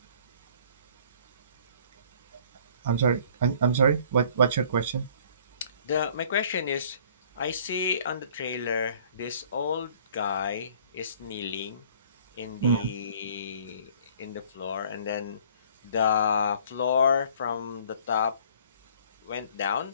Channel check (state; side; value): inverted; both; correlation -0.54